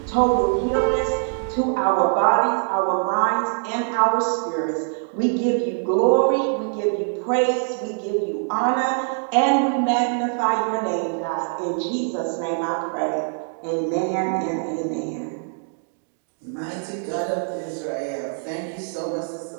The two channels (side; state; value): left; silent; 63 dB below the other